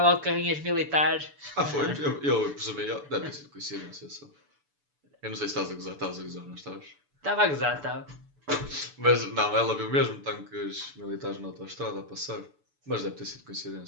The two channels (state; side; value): late; left; 6.9 ms